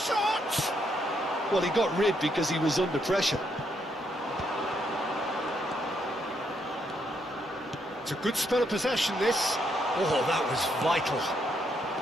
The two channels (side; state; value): both; normal; correlation 0.76